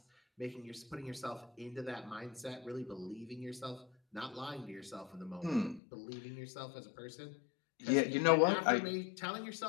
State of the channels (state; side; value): drops out; right; at 5.8 s